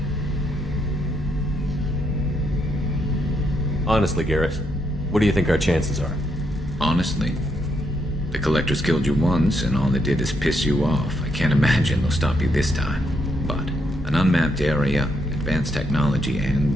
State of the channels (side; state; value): both; normal; correlation 0.77